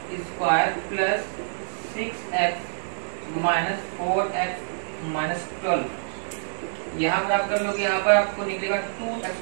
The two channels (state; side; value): silent; left; digital silence